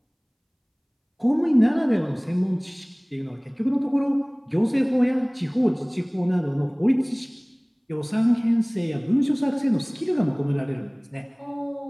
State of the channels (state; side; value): identical; both; correlation 1.00